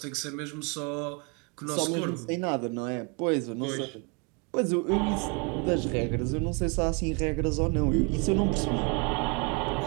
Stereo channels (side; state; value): left; quieter; 32.8 dB